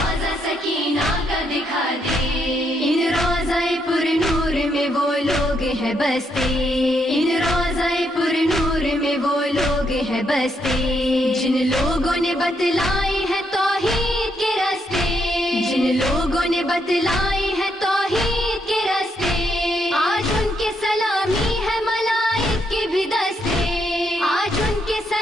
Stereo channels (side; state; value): both; normal; correlation 0.77